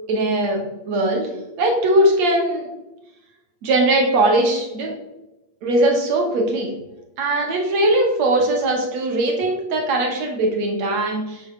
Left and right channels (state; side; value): late; left; 8.5 ms